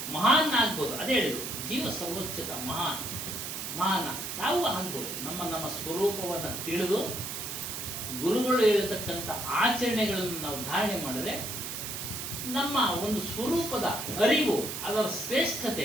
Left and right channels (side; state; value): right; noise; hiss, 5 dB below the sound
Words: ಮಹಾನ್ ಆಗ್ಬೋದು. ಅದೇ ಹೇಳಿದ್ರು, ಜೀವ ಸರ್ವೋಚ್ಚತ ಮಹಾನ್ ನಾವು ಆಗ್ಬೋದು. ನಮ್ಮ ಸ್ವರೂಪವನ್ನು ತಿಳಿದು ಗುರುಗಳು ಹೇಳತಕ್ಕಂಥ ಆಚರಣೆಗಳನ್ನು ನಾವು ಧಾರಣೆ ಮಾಡಿದ್ರೆ ನಮ್ಮ ಒಂದು ಸ್ವರೂಪದ ಅರಿವು, ಅದರ